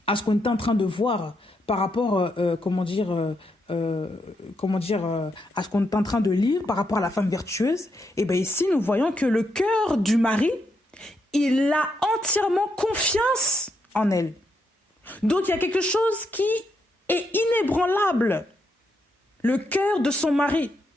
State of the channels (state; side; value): normal; both; correlation 0.80